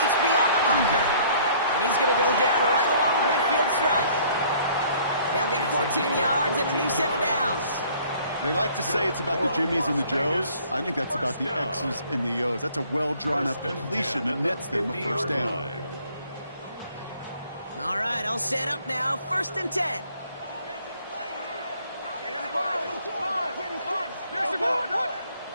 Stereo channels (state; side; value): inverted; both; correlation -0.58